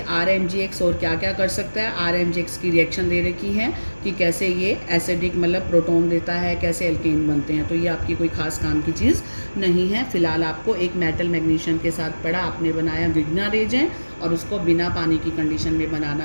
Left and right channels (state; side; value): inverted; both; correlation -1.00